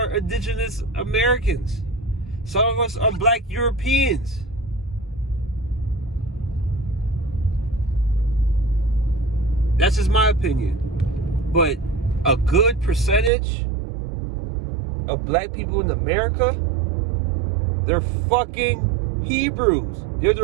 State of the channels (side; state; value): left; drops out; at 13.3 s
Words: indigenous Americans. Some of us are black Europeans. That's just my opinion. But a good percentage of black people in America, they're fucking Hebrews. They're